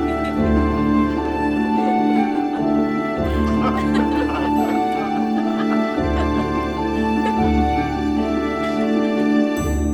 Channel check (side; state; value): both; identical; correlation 1.00